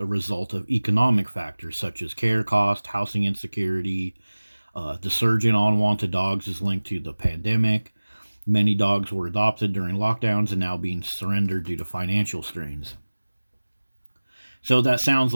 result of economic factors such as care cost, housing insecurity. The surge in unwanted dogs is linked to the pandemic. Many dogs were adopted during lockdowns and now being surrendered due to financial strains. So that sounds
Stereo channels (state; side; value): inverted; both; correlation -1.00